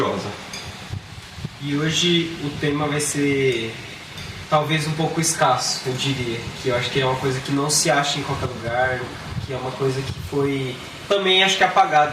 E hoje o tema vai ser talvez um pouco escasso, eu diria, que eu acho que é uma coisa que não se acha em qualquer lugar, que é uma coisa que foi também acho que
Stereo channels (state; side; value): identical; both; correlation 1.00